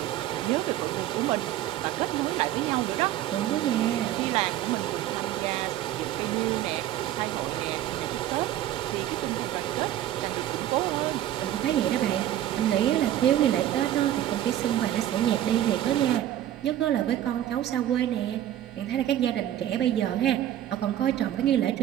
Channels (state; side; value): quieter; left; 12.5 dB